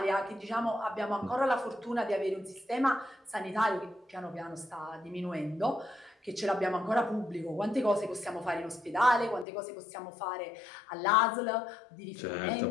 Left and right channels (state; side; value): drops out; right; at 9.5 s